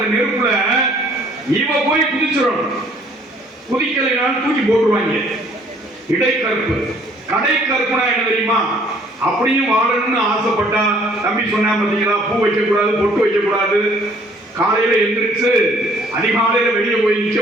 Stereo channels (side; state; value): both; normal; correlation 0.59